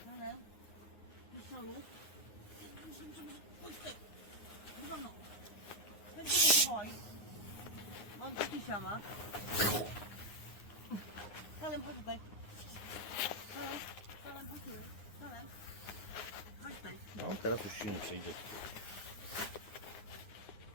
Salem. Pistolu. Pójdź tutaj. Dywaną. Będzie się boi. On kisia ma. Salem, chodź tutaj. Salem, chodź tutaj. Salem. Chodź tutaj. No teraz już się nie przejdzie.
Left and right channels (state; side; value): late; right; 9.7 ms